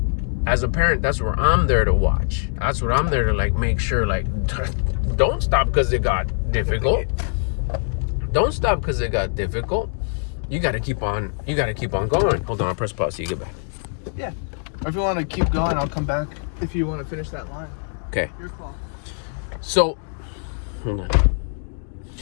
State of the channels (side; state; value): right; silent; 62 dB below the other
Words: As a parent, that's where I'm there to watch. That's what I'm there to, like, make sure, like, don't stop because it got difficult. Don't stop because it got difficult. You got to keep on going. Hold on, I'll press pause so you get back. Yeah. Or if you want to keep going, I'll come back if you want to finish that line. Okay. Your call. So, hold on.